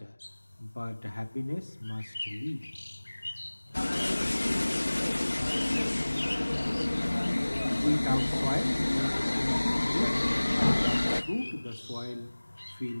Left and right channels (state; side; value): inverted; both; correlation -1.00